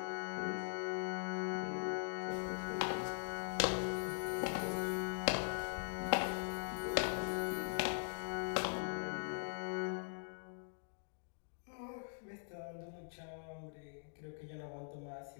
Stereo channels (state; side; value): silent; right; digital silence